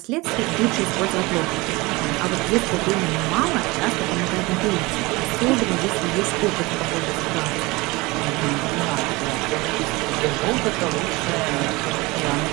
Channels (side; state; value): left; quieter; 23.0 dB